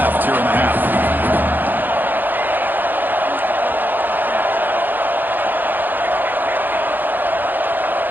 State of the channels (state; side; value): late; left; 0.089 ms